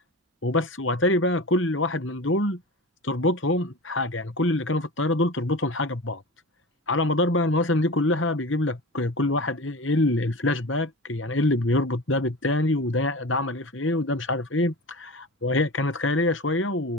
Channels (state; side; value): normal; both; correlation 0.31